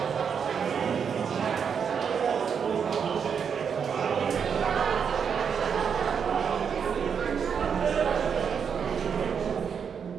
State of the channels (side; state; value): left; quieter; 6.9 dB